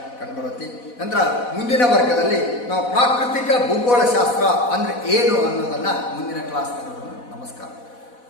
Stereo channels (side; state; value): right; late; 4.1 ms